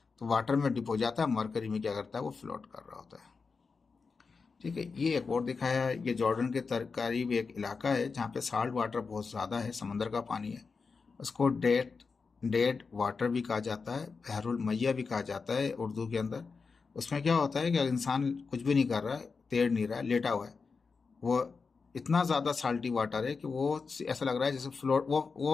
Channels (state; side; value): quieter; right; 4.8 dB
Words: तो वाटर में डिप हो जाता है, मरकरी में क्या करता है, वो फ्लोट कर रहा होता है। ठीक है, ये एक और दिखाया है, ये जॉर्डन के करीब एक इलाका है जहाँ पे साल्ट वाटर बहुत ज़्यादा है, समंदर का पानी है। उसको डेड वाटर भी कहा जाता है, बहरुल मैया भी कहा जाता है उर्दू के अंदर। उसमें क्या होता है कि इंसान कुछ भी नहीं कर रहा है, तैर नहीं रहा है, लेटा हुआ है, वो इतना ज़्यादा साल्टी वाटर है कि वो ऐसा लग रहा है जैसे फ्लोट,